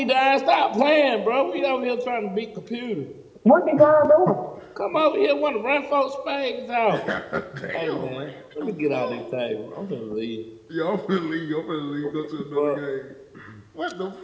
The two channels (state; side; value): identical; both; correlation 1.00